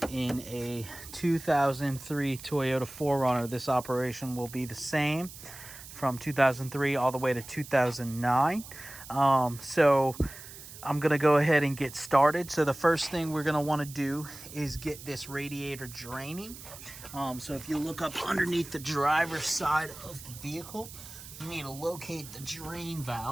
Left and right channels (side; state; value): right; noise; hiss, 15 dB below the sound